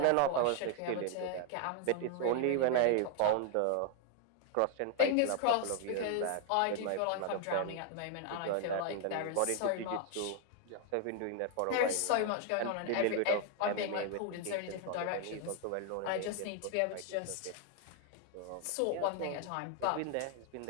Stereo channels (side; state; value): both; different; correlation 0.00